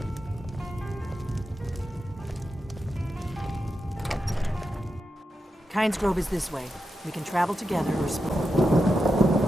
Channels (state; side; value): normal; both; correlation 0.88